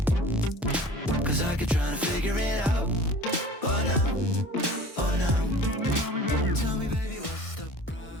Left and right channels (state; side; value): normal; both; correlation 0.44